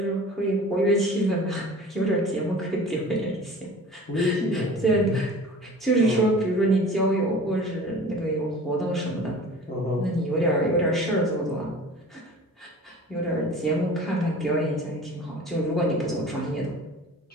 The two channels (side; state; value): both; normal; correlation 0.42